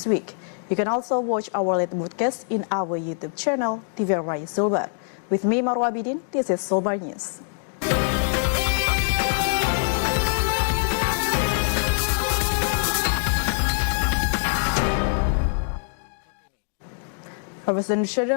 week. You can also watch our latest broadcast in our YouTube channel, TVRI Sulbar. With me, Marwa Bidin, this is Sulbar News. A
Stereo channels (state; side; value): silent; right; 63 dB below the other